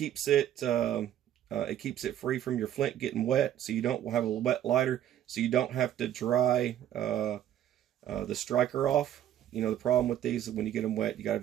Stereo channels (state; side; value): quieter; left; 11.4 dB